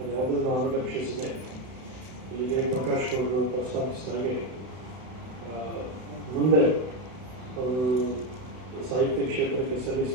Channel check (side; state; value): left; late; 32 ms